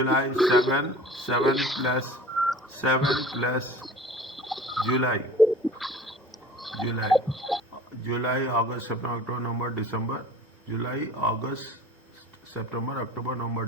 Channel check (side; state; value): both; normal; correlation 0.43